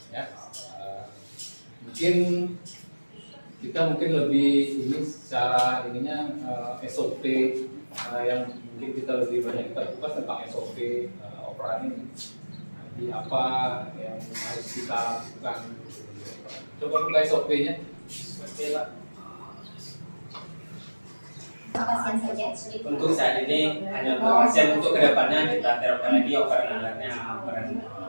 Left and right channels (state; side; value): inverted; both; correlation -1.00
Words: Ya, mungkin kita lebih ini secara ininya SOP yang mungkin kita lebih banyak kita kupas tentang SOP operasi ini. Jadi apa yang harus kita lakukan? Coba buka SOP-nya. Pasien saja. Untuk saat ini hanya untuk pasien, untuk kedepannya kita terapkan lagi operan alatnya, operan.